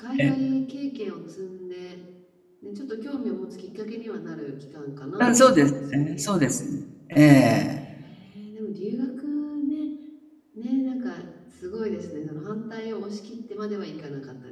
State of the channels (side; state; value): both; identical; correlation 1.00